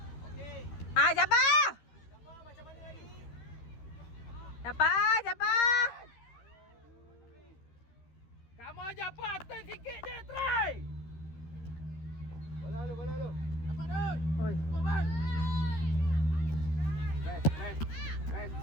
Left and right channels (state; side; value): late; right; 13 ms